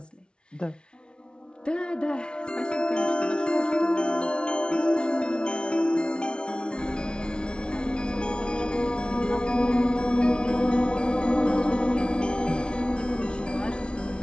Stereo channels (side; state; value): right; late; 0.056 ms